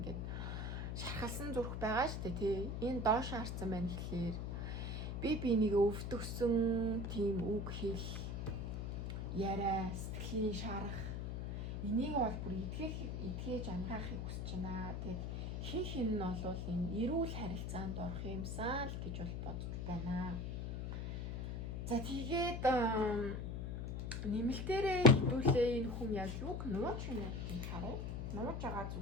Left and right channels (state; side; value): noise; left; hum, 3 dB below the sound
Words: шархалсан зүрх байгаа шүү дээ тий. Энэ доош харсан байна гэхлээр би бинийг өвдөгсөн тийм үг хэл яриа сэтгэлийн шарах энийг бол бүр эдгээж ангаахыг хүсэж байна. Тэгээд хин нь бол энэ эрүүл харилцаанд орох юмсан л гэж бол бодож байна. За тэгээд нэмэлтээрээ хэдүүлээ энэ хүн яг юг нууж байна гэдгийг харъя. Нууж байгаа